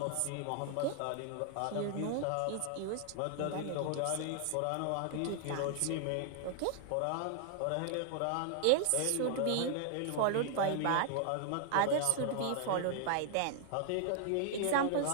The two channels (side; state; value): both; different; correlation 0.00